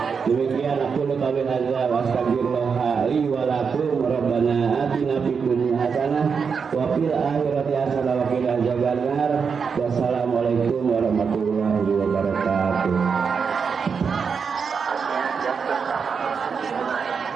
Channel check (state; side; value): quieter; left; 5.9 dB